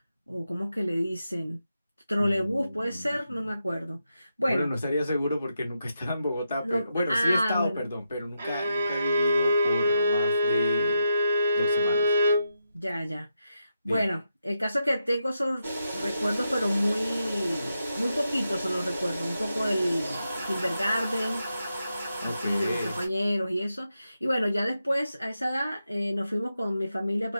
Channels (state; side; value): inverted; both; correlation -0.85